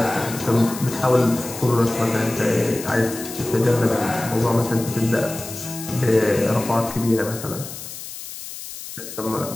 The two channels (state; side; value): noise; left; hiss, 11 dB below the sound